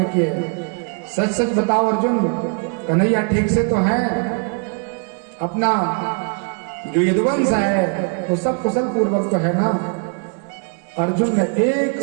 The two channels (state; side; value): quieter; left; 39.8 dB